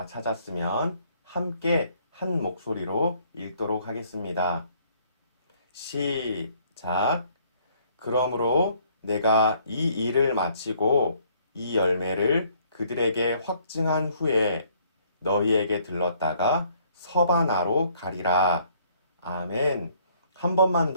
찾았으면 함께 한 목소리로 읽도록 하겠습니다. 시작. 그러므로 내가 이 일을 마치고 이 열매를 그들에게 확증한 후에 너희에게 들렀다가 서바나로 가리라. 아멘. 한 번만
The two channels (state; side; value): inverted; both; correlation -0.64